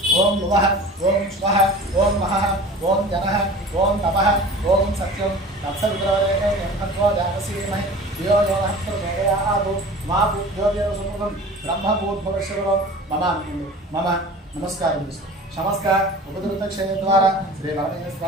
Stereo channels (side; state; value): both; normal; correlation 0.40